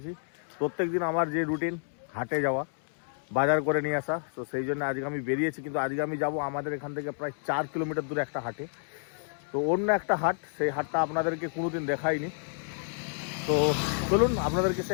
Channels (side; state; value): right; silent; digital silence